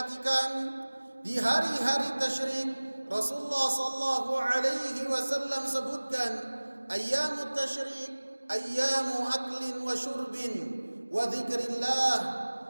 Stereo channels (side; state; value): both; inverted; correlation -1.00